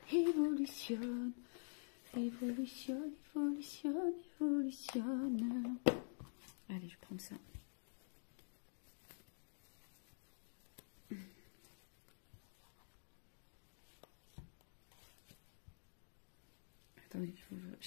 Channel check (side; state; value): right; silent; digital silence